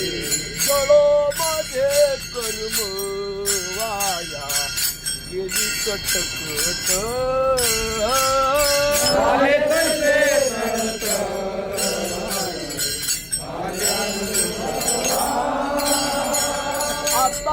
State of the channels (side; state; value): both; identical; correlation 1.00